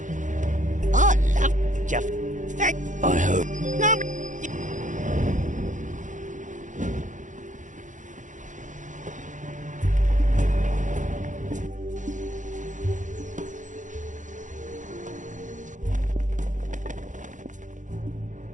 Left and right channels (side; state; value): left; late; 0.37 ms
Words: Oh, love, Jeff. Thank. I hope. No.